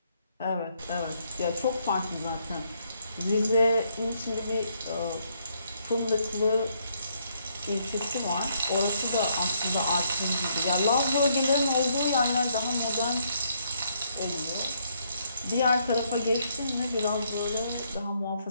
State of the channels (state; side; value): inverted; both; correlation -0.72